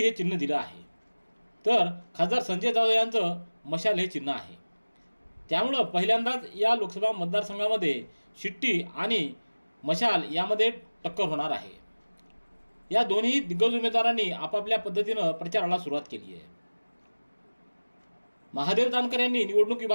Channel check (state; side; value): inverted; both; correlation -1.00